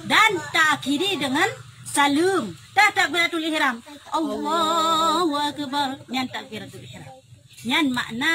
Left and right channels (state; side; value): identical; both; correlation 1.00